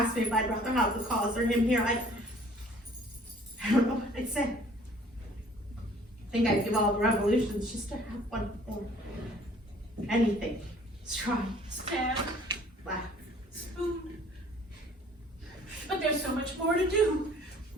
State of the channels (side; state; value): both; normal; correlation 0.54